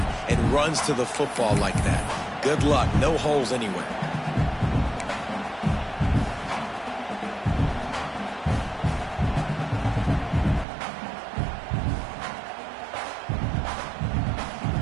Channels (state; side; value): drops out; left; at 10.7 s